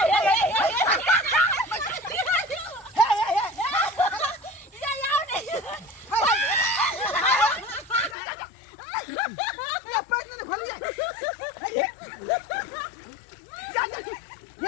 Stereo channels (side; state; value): right; drops out; at 8.2 s